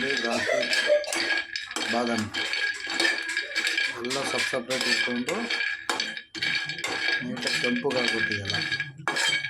ದ್ರಾಕ್ಷಿ, ಬಾದಾಮಿ ಎಲ್ಲ ಸಪ್ರೇಟ್ ಇಟ್ಕೊಂಡು ನೀಟಾಗಿ ಕೆಂಪಗಾಗ್ಬಿಟ್ಟಿದೆಲ್ಲ.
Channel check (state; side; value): identical; both; correlation 1.00